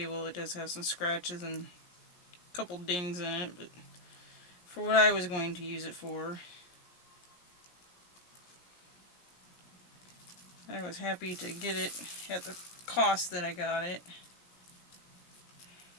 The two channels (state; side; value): late; right; 17 ms